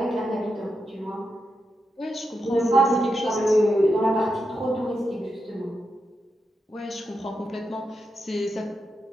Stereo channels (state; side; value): normal; both; correlation 0.86